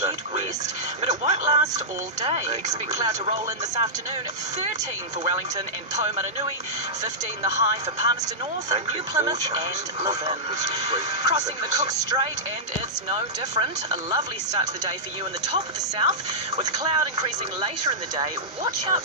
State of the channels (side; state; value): both; normal; correlation -0.12